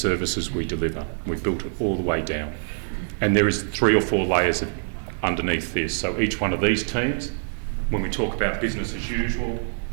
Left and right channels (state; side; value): silent; left; digital silence